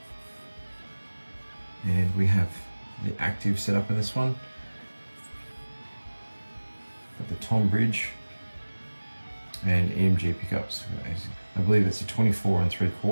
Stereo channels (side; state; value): both; inverted; correlation -1.00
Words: and we have the active setup in this one. Got the tom bridge and EMG pickups. I believe it's a 24